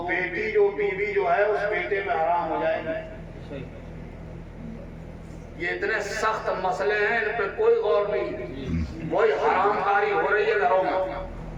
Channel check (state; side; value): identical; both; correlation 1.00